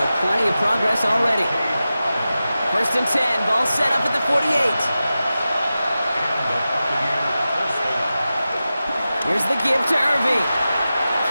plenty of progress already. 1st and 10. Ball set up at the 48. Here's the give to Irving.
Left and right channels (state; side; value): inverted; both; correlation -0.94